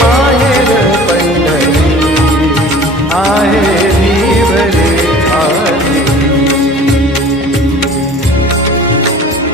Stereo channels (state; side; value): normal; both; correlation 0.44